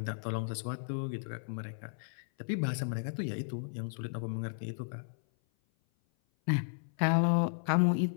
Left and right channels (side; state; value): right; silent; 55 dB below the other